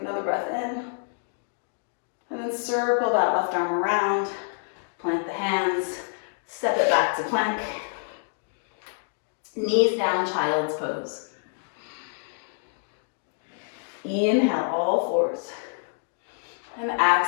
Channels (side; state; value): right; silent; digital silence